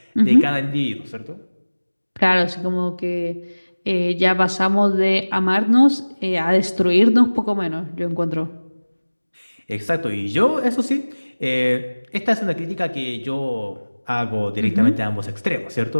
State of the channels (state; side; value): inverted; both; correlation -1.00